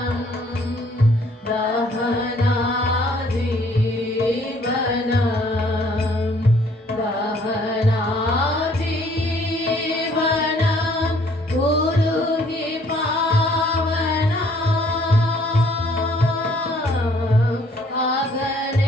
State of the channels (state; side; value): normal; both; correlation 0.61